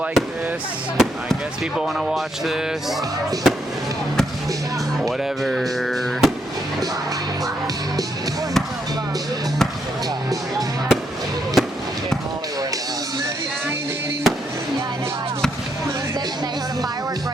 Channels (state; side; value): normal; both; correlation 0.77